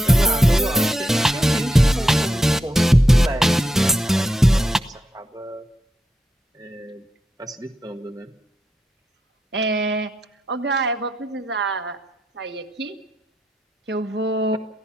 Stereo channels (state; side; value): normal; both; correlation 0.84